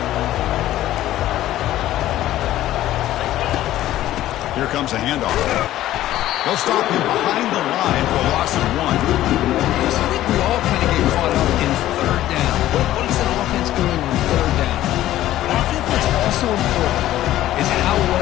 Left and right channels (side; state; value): right; quieter; 14.0 dB